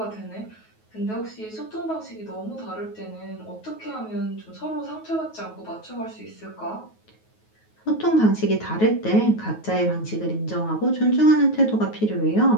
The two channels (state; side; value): late; right; 9.3 ms